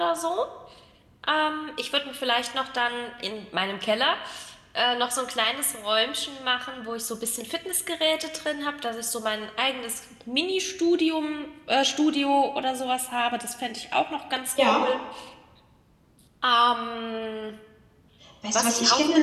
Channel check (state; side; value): identical; both; correlation 1.00